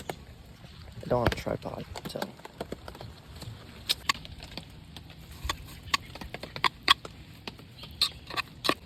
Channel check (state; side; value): identical; both; correlation 1.00